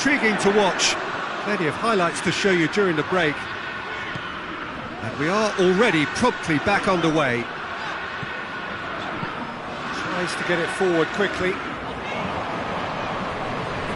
to watch. Plenty of highlights to show you during the break. And we are already promptly back underway. Tries to get it forward quickly.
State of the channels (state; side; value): identical; both; correlation 1.00